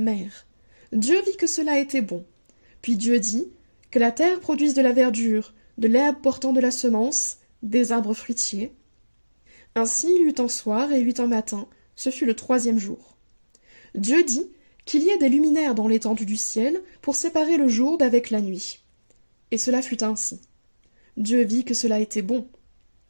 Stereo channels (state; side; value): inverted; both; correlation -1.00